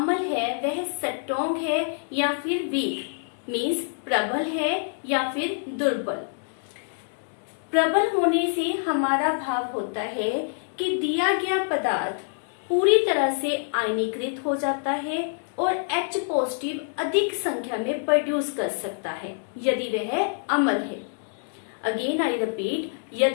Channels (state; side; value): silent; right; digital silence